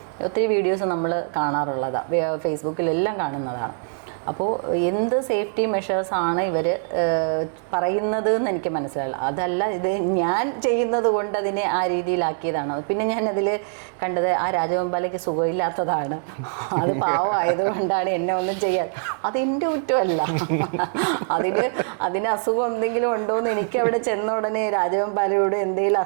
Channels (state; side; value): silent; left; digital silence